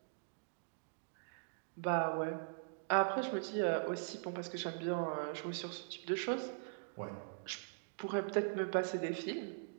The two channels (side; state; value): left; silent; digital silence